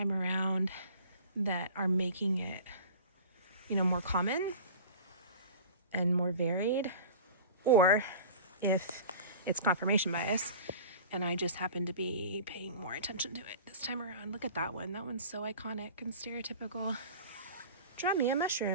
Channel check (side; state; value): both; inverted; correlation -0.40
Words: around that are making it, more common and more varied, or if it's confirmation bias and I just happen to be paying more attention to it this time around. Look at that one. That one's so iconic and stereotypical. Draw me a